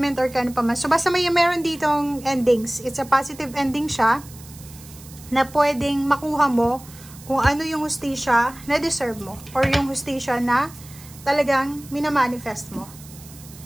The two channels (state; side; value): noise; right; hiss, 19 dB below the sound